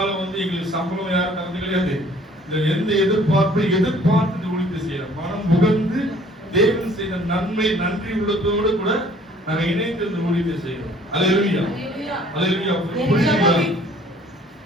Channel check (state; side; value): normal; both; correlation 0.56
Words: எங்களுக்கு சம்பளம் யாரும் தரது கிடையாது. எந்த எதிர்பார்ப்பை எதிர்பார்த்து இந்த ஊழியத்தை செய்யறோம். மனம் புகழ்ந்து தேவன் செய்த நன்மை நன்றி உள்ளத்தோடு கூட நாங்க இணைந்து இந்த ஊழியத்தை செய்யறோம். அல்லேலூயா அல்லேலூயா.